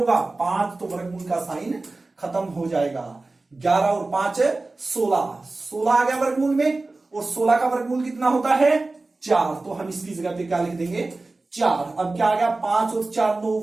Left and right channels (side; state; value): left; quieter; 3.3 dB